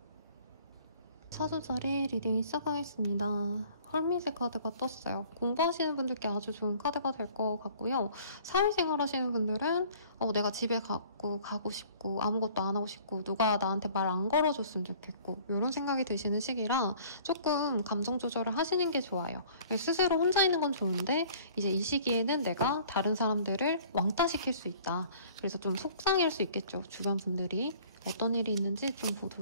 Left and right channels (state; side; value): inverted; both; correlation -0.52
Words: 사주자리 리딩 시작하겠습니다. 헐밋의 카드가 떴어요. 공부하시는 분들께 아주 좋은 카드가 될 것 같고요. 사회생활 하시는 분들은 내가 집에 가고 싶고 아무것도 안 하고 싶고 누가 나한테 말 안 걸어줬으면 좋겠고 이런 생각이 드시는 시기라 조금 감정 조절을 하시는 게 좋아요. 스스로 혼자 있는 건 좋은데 이제 이 시기에는 내가 다른 사람들을 왕따시킬 수 있다. 그래서 좀 속상할 수 있겠죠. 주변 분들이. 어떤 일이 있는지 좀